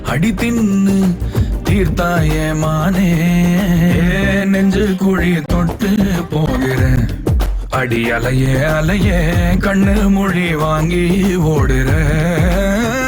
அடி தின்னு தீர்த்தாய மானே நெஞ்சு குழி தொட்டு போகிற அடி அலையே அலையே கண்ணு மொழி வாங்கி ஓடுற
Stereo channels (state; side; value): identical; both; correlation 1.00